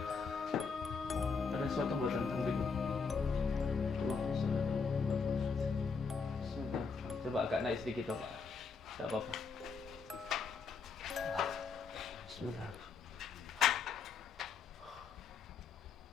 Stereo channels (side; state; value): right; quieter; 5.2 dB